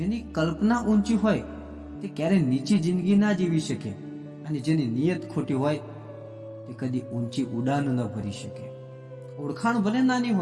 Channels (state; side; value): identical; both; correlation 1.00